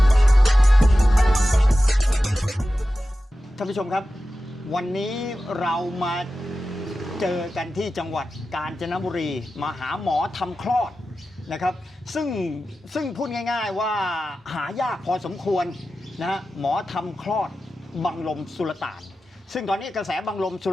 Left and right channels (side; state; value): both; normal; correlation 0.93